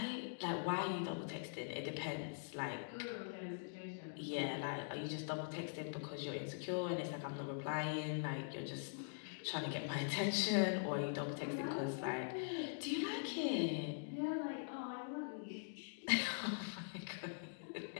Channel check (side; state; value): right; silent; digital silence